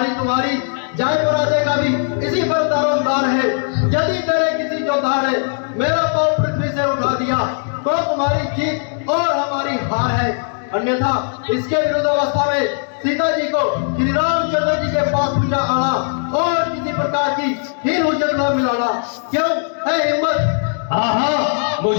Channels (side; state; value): right; silent; digital silence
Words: तुम्हारी जय पराजय का भी इसी पर दारोमदार है। यदि तेरे किसी योद्धा ने मेरा पांव पृथ्वी से उठा दिया तो तुम्हारी जीत और हमारी हार है। अन्यथा इसके विरुद्ध अवस्था में सीता जी को श्री रामचंद्र जी के पास पूजा आना और किसी प्रकार की हीन हुज्जत न मिलाना। क्यों है हिम्मत? हाँ हाँ,